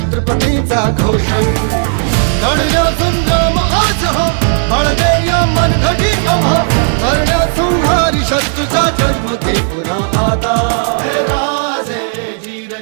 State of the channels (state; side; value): silent; left; 69 dB below the other